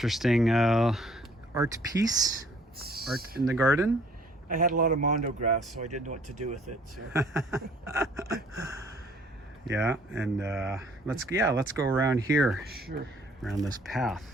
art piece, art in the garden. I had a lot of mondo grass, so I didn't know what to do with it. So. Yeah, and let's go around here. Sure. Around this path.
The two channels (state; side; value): normal; both; correlation 0.58